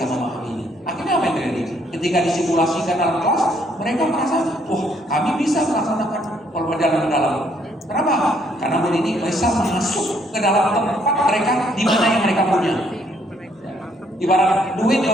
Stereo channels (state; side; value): normal; both; correlation 0.68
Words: memahami ini. Akhirnya apa yang terjadi? Ketika disimulasikan dalam kelas, mereka merasa, wah kami bisa melaksanakan pelajaran mendalam. Kenapa? Karena Bu Nini bisa masuk ke dalam tempat mereka di mana yang mereka punya. Ibarat duit